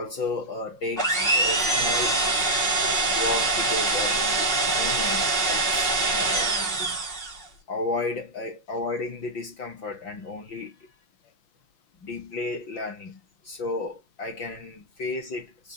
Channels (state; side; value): late; right; 5.5 ms